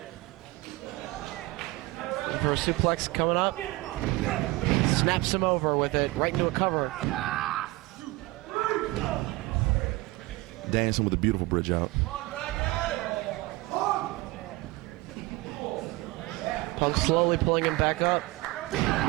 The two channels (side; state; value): left; quieter; 21.0 dB